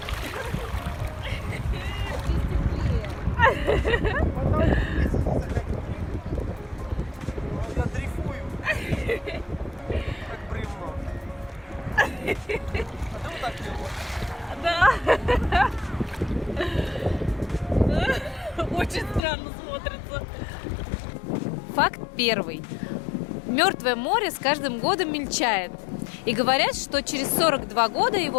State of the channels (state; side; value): drops out; right; at 19.2 s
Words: Я дрейфую. Как бревно. А ты вот так делаешь? Да. Очень странно смотрится. Факт первый. Мертвое море с каждым годом мельчает. И говорят, что через 42 года